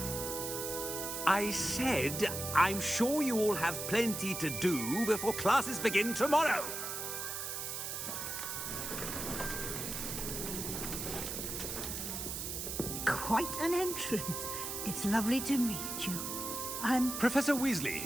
I said, I'm sure you all have plenty to do before classes begin tomorrow. Quite an entrance. It's lovely to meet you. I'm... Professor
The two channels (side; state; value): right; noise; hiss, 4 dB below the sound